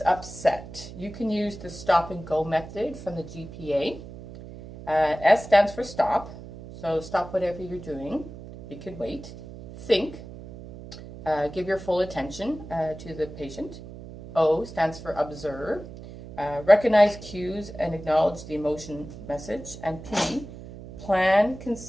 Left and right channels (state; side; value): noise; right; hum, 14 dB below the sound